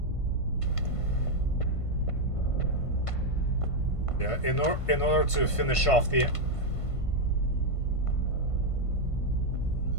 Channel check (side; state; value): right; late; 1.5 ms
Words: Yeah, in order to finish off the